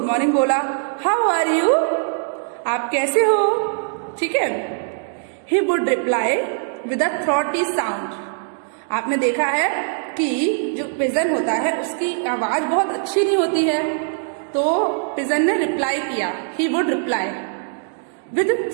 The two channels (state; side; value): silent; left; digital silence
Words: मॉर्निंग बोला। हाउ आर यू, आप कैसे हो, ठीक है। He would reply with a throaty sound, आपने देखा है कि जो पिजन होता है उसकी आवाज बहुत अच्छी नहीं होती है, तो पिजन ने रिप्लाई किया, he would reply with